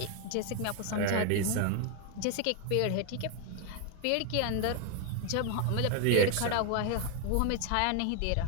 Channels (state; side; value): different; both; correlation 0.01